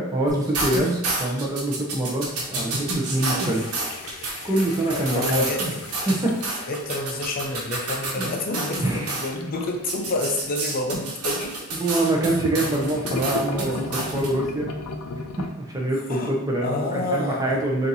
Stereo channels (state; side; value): normal; both; correlation 0.42